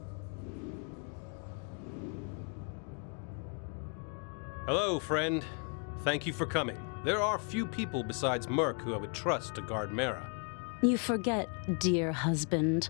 Hello, friend. Thank you for coming. There are few people besides Merc who I would trust to guard Mara. You forget, dear husband.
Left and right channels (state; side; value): quieter; right; 38.6 dB